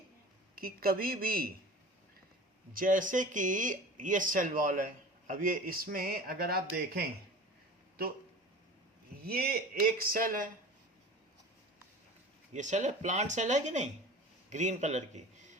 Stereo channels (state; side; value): normal; both; correlation 0.38